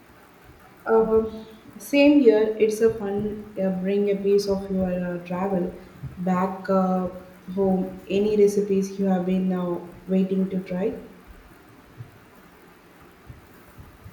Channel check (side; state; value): both; identical; correlation 1.00